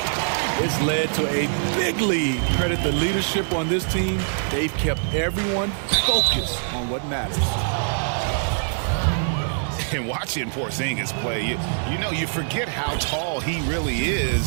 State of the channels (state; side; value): silent; left; 63 dB below the other